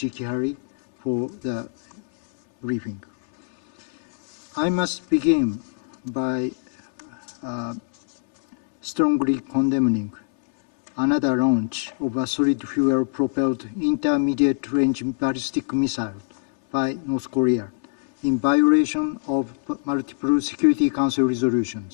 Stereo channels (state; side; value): silent; right; digital silence